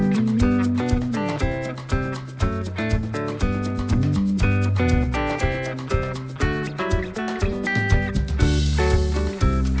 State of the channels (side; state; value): both; identical; correlation 1.00